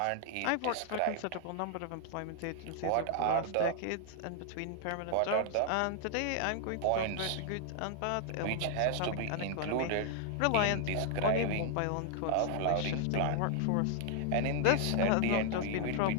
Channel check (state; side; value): different; both; correlation 0.00